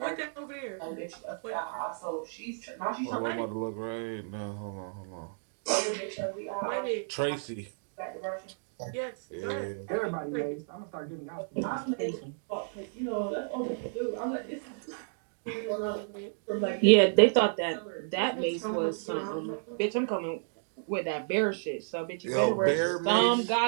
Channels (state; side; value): silent; left; digital silence